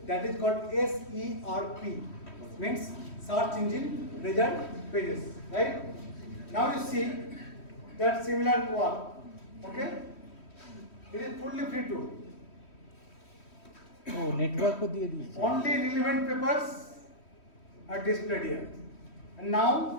that is called SERP, means Search Engine Result Pages, right? Now you see that similar one, okay? It is fully free tool. ও, নেটওয়ার্কও দিয়ে দিয়েছে। Only relevant papers are displayed here. And now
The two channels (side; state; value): right; late; 3.1 ms